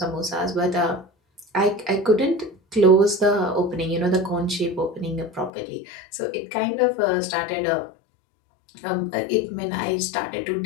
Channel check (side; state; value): right; drops out; at 5.5 s